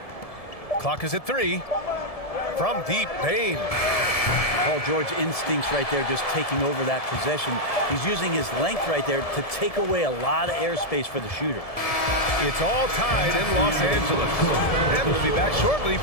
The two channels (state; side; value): late; right; 1.7 ms